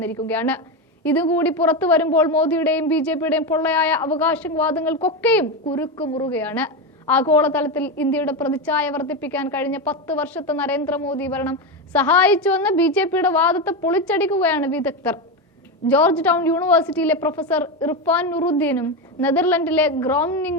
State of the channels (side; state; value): both; normal; correlation 0.14